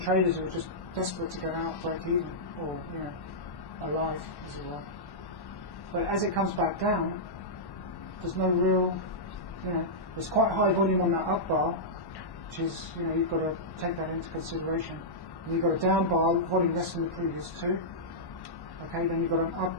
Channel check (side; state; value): right; late; 1.1 ms